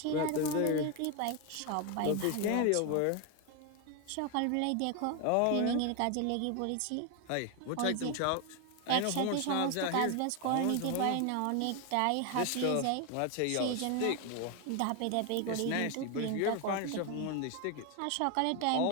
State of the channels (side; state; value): both; different; correlation 0.01